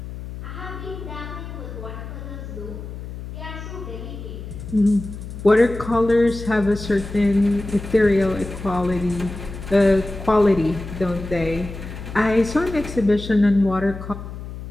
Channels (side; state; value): left; noise; hum, 10 dB below the sound